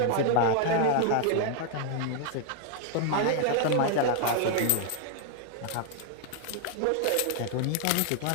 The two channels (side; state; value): both; different; correlation 0.00